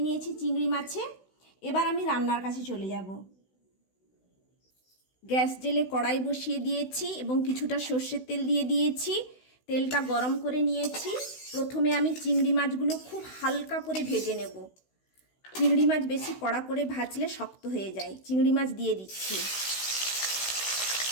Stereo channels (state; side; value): late; right; 16 ms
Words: নিয়েছি চিংড়ি মাছে। এবার আমি রান্নার কাছে চলে যাব। গ্যাস জেলে কড়াই বসিয়ে দিয়েছি এবং কিছুটা সর্ষের তেল দিয়ে দিয়েছি। তেলটা গরম করে নিয়েছি। প্রথমে আমি চিংড়ি মাছগুলো খুব হালকা করে ভেজে নেব। চিংড়ি মাছ বেশি কড়া করে ভাজলে শক্ত হয়ে যায়। চিংড়ি মাছ দিয়ে দিচ্ছি।